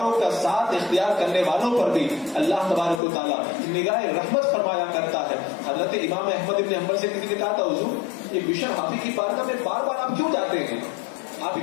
کا ساتھ اختیار کرنے والوں پر بھی اللہ تبارک و تعالیٰ نگاہ رحمت فرمایا کرتا ہے. حضرت امام احمد بن حنبل سے کسی نے کہا تھا حضور یہ بشر حافظ کی بارگاہ میں بار بار آپ کیوں جاتے ہیں؟ آپ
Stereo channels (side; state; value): right; drops out; at 3.0 s